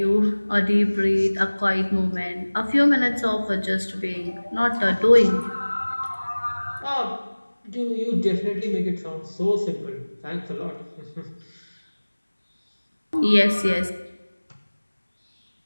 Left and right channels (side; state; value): both; inverted; correlation -1.00